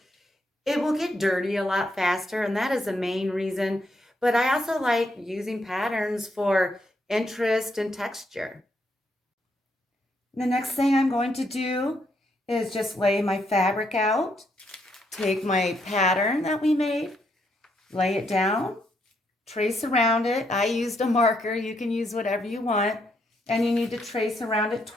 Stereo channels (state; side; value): normal; both; correlation 0.76